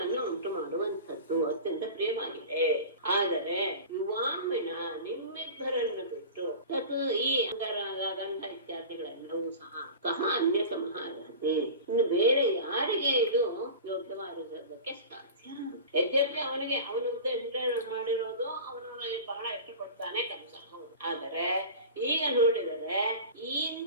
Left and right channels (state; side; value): inverted; both; correlation -0.34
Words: ಉಂಟು ಮಾಡುವಂಥದ್ದು, ಅತ್ಯಂತ ಪ್ರಿಯವಾಗಿದೆ. ಆದರೆ ಯುವಾಮಿನ ನಿಮ್ಮಿಬ್ಬರನ್ನು ಬಿಟ್ಟು ತತ್ ಈ ಅಂಗರಾಗ ಗಂಧ ಇತ್ಯಾದಿಗಳೆಲ್ಲವೂ ಸಹ ಅನ್ಯತಮಃ ಅರ್ಹತೆ. ಇನ್ನು ಬೇರೆ ಯಾರಿಗೆ ಇದು ಯೋಗ್ಯವಾಗಿರೋದಕ್ಕೆ ಸಾಧ್ಯ? ಯದ್ಯಪಿ ಅವನಿಗೆ ಅವನ ಉದ್ದೇಶ ಮಾಡಿರೋದು ಅವನು ಬಹಳ ಇಷ್ಟಪಡ್ತಾನೆ ಕಂಸ, ಆದರೆ ಈಗ ನೋಡಿದರೆ